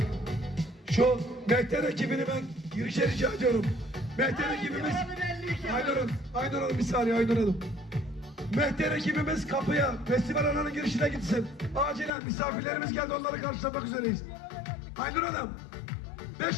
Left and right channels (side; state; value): right; drops out; at 12.1 s